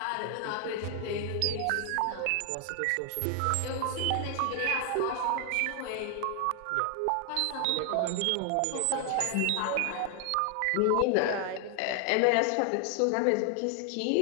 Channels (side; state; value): both; different; correlation 0.00